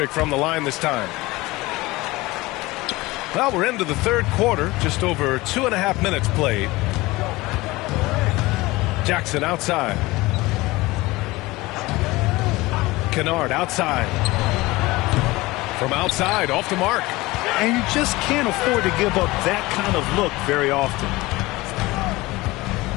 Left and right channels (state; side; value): quieter; right; 20.6 dB